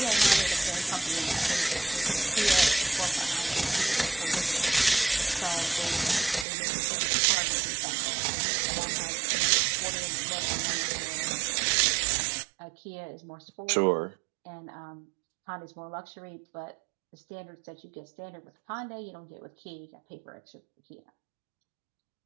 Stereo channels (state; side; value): drops out; left; at 6.5 s